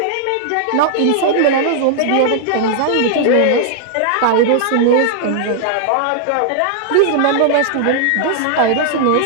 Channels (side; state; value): both; different; correlation -0.01